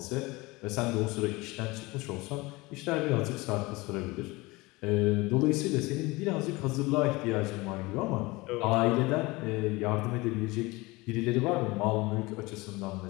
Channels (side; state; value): right; quieter; 22.6 dB